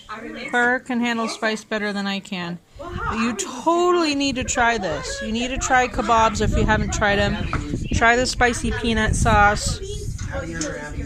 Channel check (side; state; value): both; identical; correlation 1.00